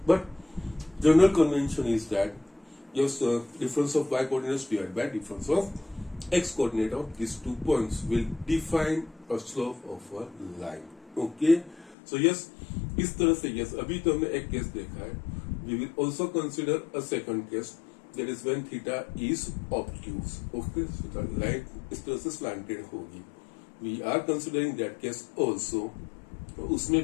but general convention is that just difference of y coordinates divided by difference of x coordinate of these 2 points will define a slope of a line. Okay, so yes, इस तरह से yes, अभी तो हमने एक case देखा है. We will also consider a second case, that is when theta is obtuse. Okay, so the line इस तरह से slanted होगी. We are considering that case also. तो उसमें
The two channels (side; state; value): right; drops out; at 12.0 s